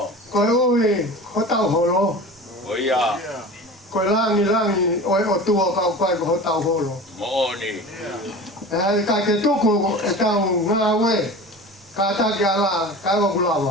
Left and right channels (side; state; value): both; normal; correlation 0.35